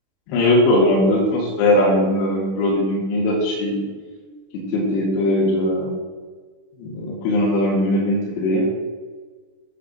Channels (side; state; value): right; late; 31 ms